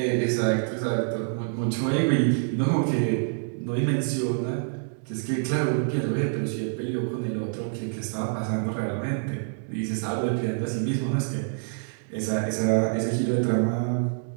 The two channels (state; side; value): silent; left; 60 dB below the other